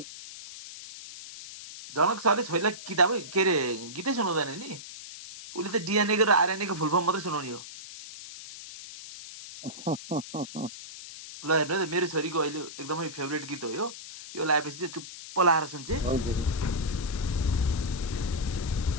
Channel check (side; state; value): left; noise; hiss, 13 dB below the sound